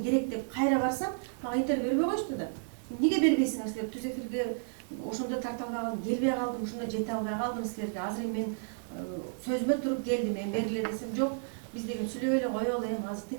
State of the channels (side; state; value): left; silent; digital silence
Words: керек деп кайра барсам, мага интервью бербей коюшту да. Эмнеге бербейсиңер силер? Түз эфирге ошондо тарта албай калдым, келбей калдым, ошондо жете албай калдым силерге. Азыр мен сөзүмө туруп келдим, мен бергиле десем жок. Биз деген сүйлөп эле коелу, азыр